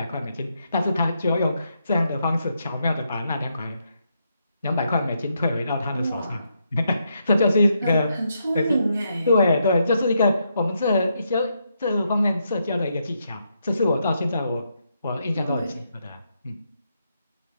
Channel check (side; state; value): both; inverted; correlation -0.79